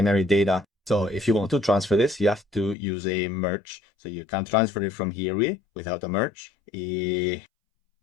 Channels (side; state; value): right; drops out; at 2.8 s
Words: data. So if you want to transfer this, you have to use a merge. So you can transfer it from here without a merge.